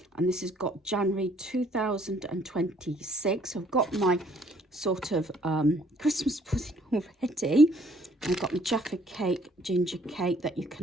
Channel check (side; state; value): both; normal; correlation 0.62